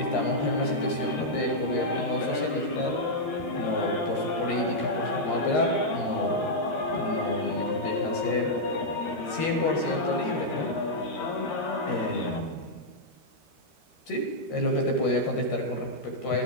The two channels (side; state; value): right; late; 13 ms